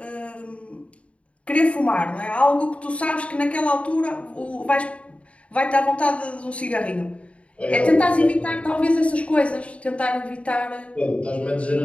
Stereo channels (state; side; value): late; right; 0.063 ms